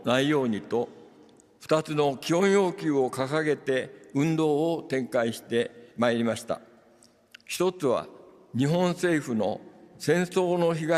ないようにと、2つの基本要求を掲げて運動を展開してまいりました。一つは、日本政府の戦争の被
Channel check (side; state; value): both; identical; correlation 1.00